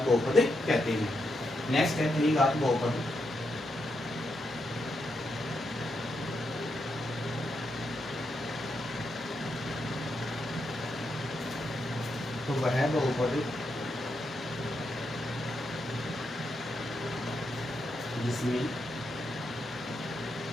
बहुपद कहते हैं। नेक्स्ट है त्रिघात बहुपद। तो वह बहुपद जिसमें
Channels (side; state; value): both; normal; correlation 0.83